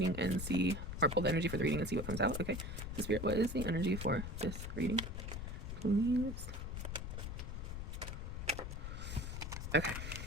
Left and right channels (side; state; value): left; noise; rumble, 5 dB below the sound